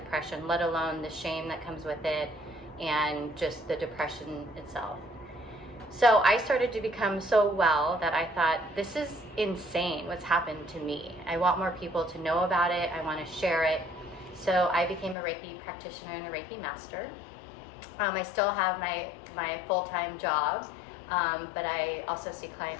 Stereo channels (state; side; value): drops out; right; at 15.2 s